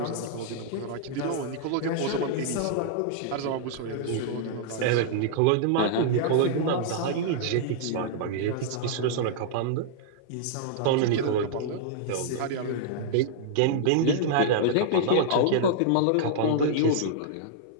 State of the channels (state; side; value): different; both; correlation -0.01